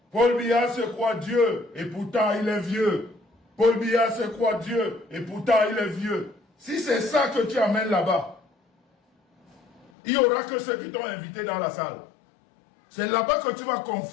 Paul Biya se croit Dieu et pourtant il est vieux. Paul Biya se croit Dieu et pourtant il est vieux. Si c'est ça que tu amènes là-bas, il n'y aura que ceux qui t'ont invité dans la salle. C'est là-bas que tu vas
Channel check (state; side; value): drops out; right; at 9.9 s